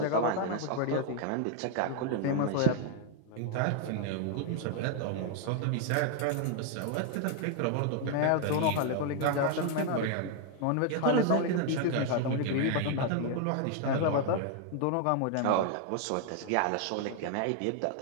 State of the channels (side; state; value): both; different; correlation 0.00